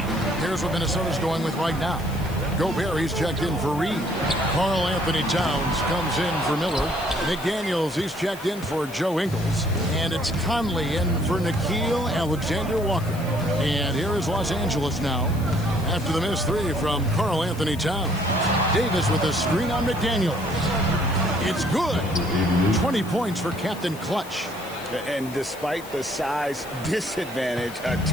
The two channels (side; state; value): left; noise; hiss, 18 dB below the sound